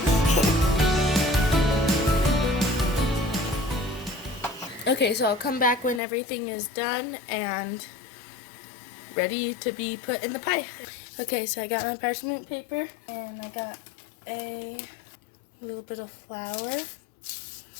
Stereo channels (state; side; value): drops out; right; at 6.0 s